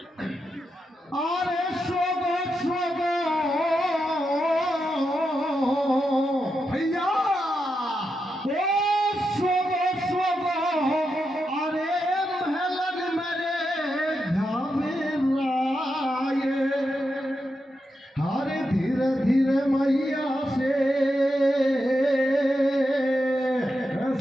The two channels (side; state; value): both; normal; correlation 0.86